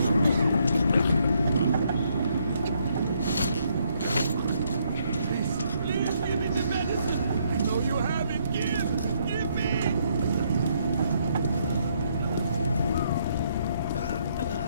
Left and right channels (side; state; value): both; inverted; correlation -0.72